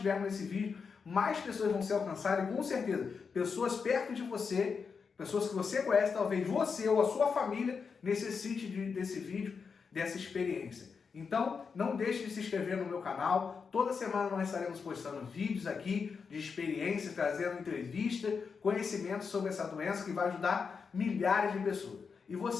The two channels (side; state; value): right; quieter; 5.6 dB